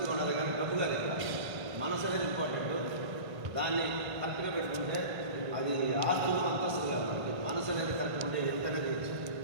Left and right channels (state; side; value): late; left; 1.6 ms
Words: ఉండాలి కానీ డబ్బుగా లేదు. మనసు అనేది ఇంపార్టెంట్. దాన్ని కరెక్ట్గా పెట్టుకుంటే అది ఆస్తులు అంతస్తు కాదు, మనకి మనసు అనేది కరెక్ట్ ఉంటే ఎంతనే చేయొచ్చు.